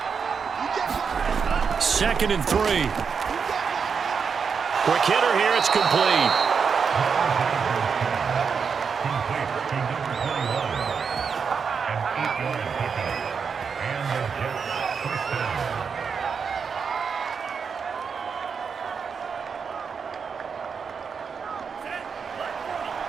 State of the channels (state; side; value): quieter; left; 6.0 dB